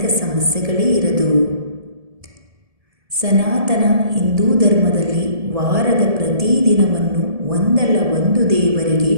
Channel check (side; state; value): left; late; 1.7 ms